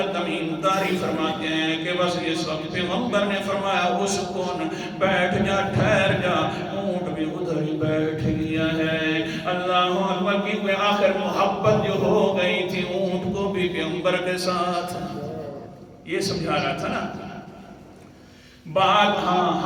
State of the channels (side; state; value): both; identical; correlation 1.00